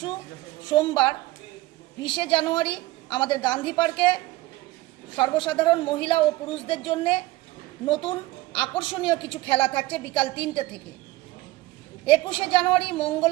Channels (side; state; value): left; quieter; 19.0 dB